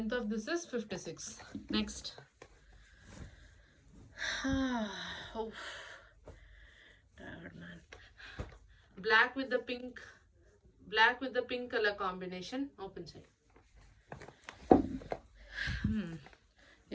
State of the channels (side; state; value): both; identical; correlation 1.00